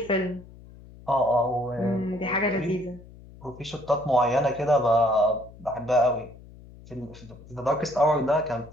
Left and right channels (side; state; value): left; noise; hum, 20 dB below the sound